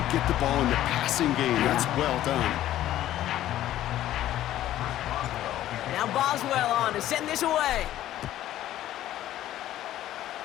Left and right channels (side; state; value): right; quieter; 13.3 dB